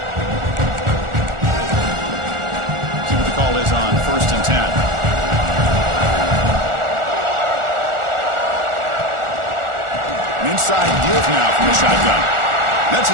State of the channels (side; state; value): left; late; 1.4 ms